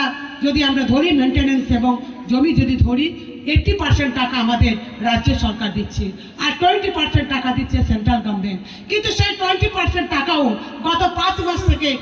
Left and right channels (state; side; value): identical; both; correlation 1.00